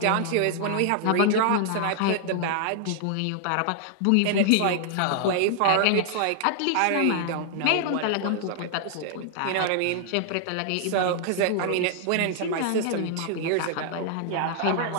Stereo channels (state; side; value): different; both; correlation -0.01